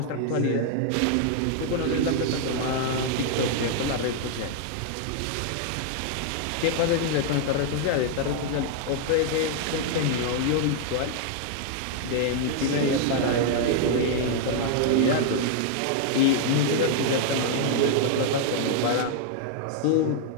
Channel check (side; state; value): both; different; correlation 0.00